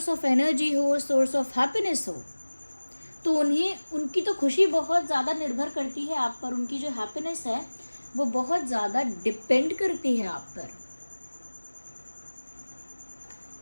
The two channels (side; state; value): both; inverted; correlation -1.00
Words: ऑफ एनर्जी हो, सोर्स ऑफ हैप्पीनेस हो, तो उनकी तो खुशी बहुत ज़्यादा निर्भर करती है आप पर, उनकी जो हैप्पीनेस है वो बहुत ज़्यादा डिपेंड करती है आप पर।